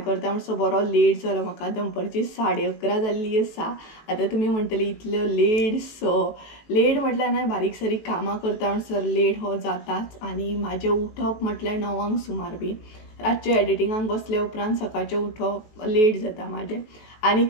करता म्हणसो बरो लेट जालो म्हाका दनपारची 11:30 जाल्ली आसा आता तुम्ही म्हणटली इतलो लेट सो लेट म्हटल्यार नाही बारीक सारीक कामां करता म्हणसर लेट हो जाताच आनी म्हाजें उठप म्हटल्यार 9 सुमार बी रातचे एडिटिंगाक बसले उपरांत सकाळचें उठप लेट जाता म्हाजें आनी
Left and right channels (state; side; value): late; right; 19 ms